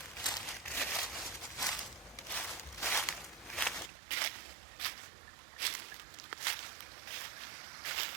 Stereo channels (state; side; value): drops out; left; at 3.9 s